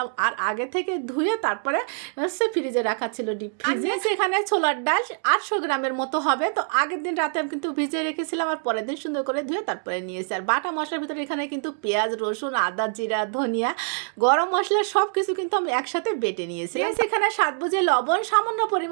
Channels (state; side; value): silent; left; 62 dB below the other